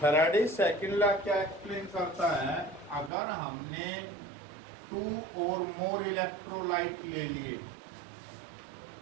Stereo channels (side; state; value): left; drops out; at 3.1 s